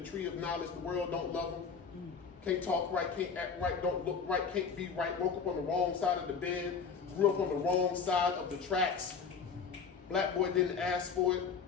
tree of knowledge. The world don't love him. Can't talk right, can't act right, don't look right, can't be right. Woke up on the wrong side of the bed. Grew up on the wrong side of the tracks. Black boy didn't ask for it.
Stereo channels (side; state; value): right; quieter; 5.8 dB